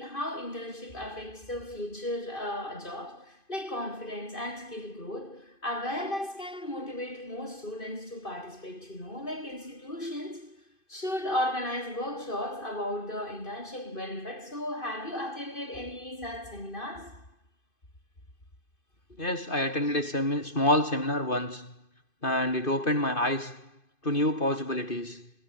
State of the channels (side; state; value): right; late; 2.5 ms